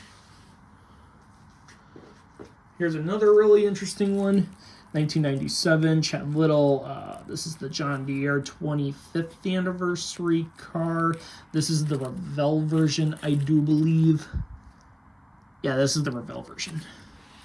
Here's another really interesting one. 1997, Chad Little. This is the John Deere 25th anniversary car. This is the Revell version, I do believe. Yeah, this is the Revell version.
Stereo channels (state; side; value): identical; both; correlation 1.00